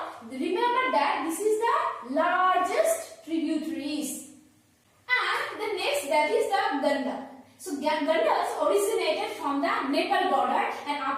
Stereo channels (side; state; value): both; identical; correlation 1.00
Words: remember that this is the largest tributaries. And the next, that is the Ganda. So Gandas originated from the Nepal border, and